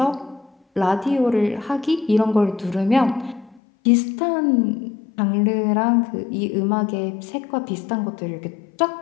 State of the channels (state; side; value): drops out; right; at 3.6 s